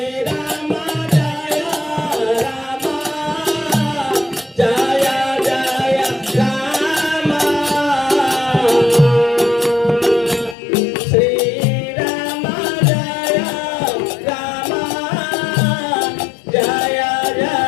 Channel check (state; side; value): drops out; right; at 10.6 s